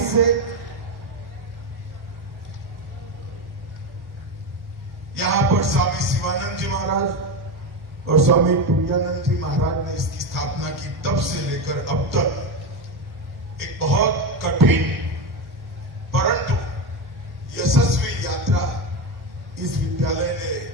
से यहां पर स्वामी शिवानंद जी महाराज और स्वामी तुरानंद जी महाराज ने इसकी स्थापना की। तब से लेकर अब तक एक बहुत कठिन परंतु यशस्वी यात्रा इस विद्यालय ने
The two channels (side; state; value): left; late; 1.1 ms